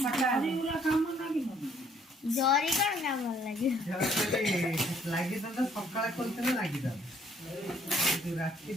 फटा जरी कौन काम लगे लागी तो सकाळ खोलते ना लागी था रात्रि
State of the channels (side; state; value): both; normal; correlation 0.63